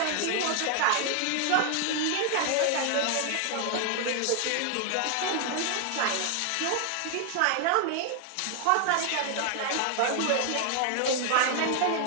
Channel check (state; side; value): different; both; correlation 0.00